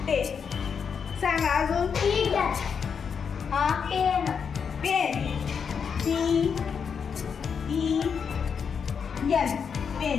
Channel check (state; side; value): quieter; right; 6.5 dB